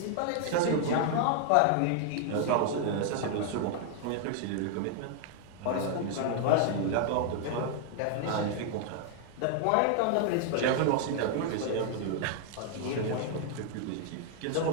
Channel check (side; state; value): both; different; correlation 0.00